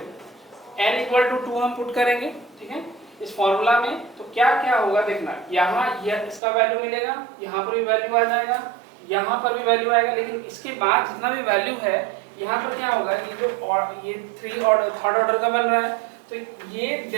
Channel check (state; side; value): drops out; left; at 6.4 s